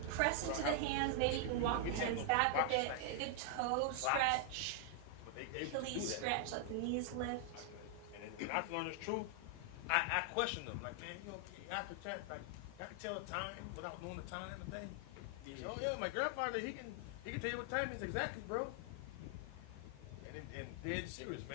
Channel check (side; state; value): both; different; correlation 0.00